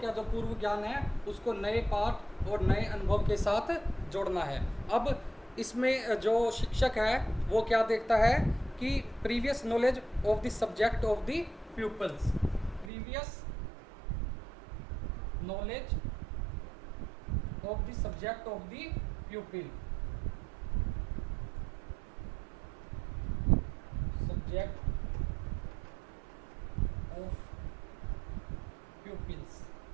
जो पूर्व ज्ञान है उसको नए पाठ और नए अनुभव के साथ जोड़ना है. अब इसमें जो शिक्षक है वो क्या देखता है कि previous knowledge of the subject of the people's. Previous knowledge of the subject of the प्यूपिल. Subject of pupils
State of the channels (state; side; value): drops out; left; at 12.9 s